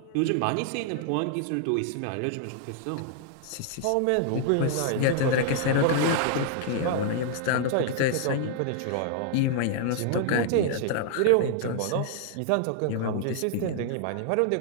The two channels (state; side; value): different; both; correlation 0.00